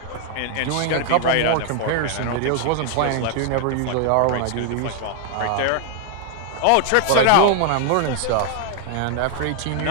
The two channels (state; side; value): different; both; correlation 0.00